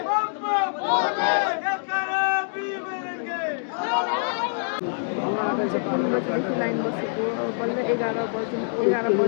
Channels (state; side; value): silent; right; digital silence